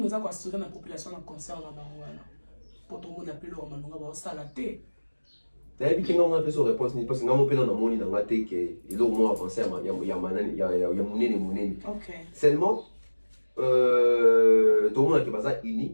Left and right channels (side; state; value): both; inverted; correlation -1.00